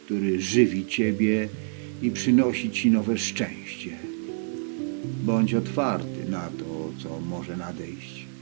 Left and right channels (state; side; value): silent; left; digital silence